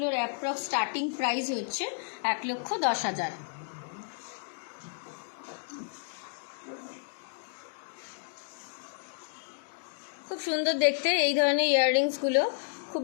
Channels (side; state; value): right; silent; digital silence